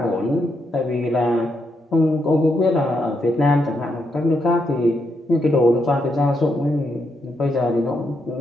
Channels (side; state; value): both; normal; correlation 0.80